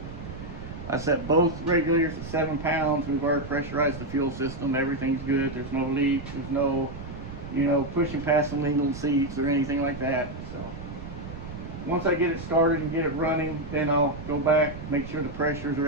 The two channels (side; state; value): right; noise; rumble, 11 dB below the sound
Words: I set both regulators at 7 pounds. We've already pressurized the fuel system. Everything's good. There's no leaks. There's no, pushing past some legal seats or anything like that. So once I get it started and get it running, then I'll go back, make sure the pressures or